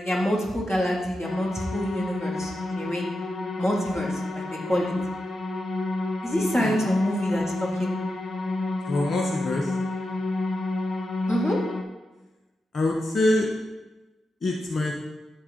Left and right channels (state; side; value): normal; both; correlation 0.89